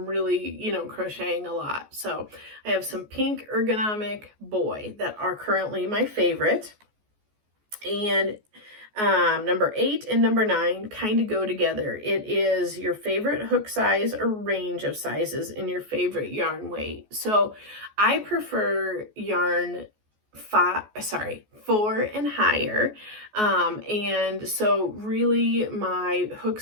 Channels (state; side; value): late; left; 14 ms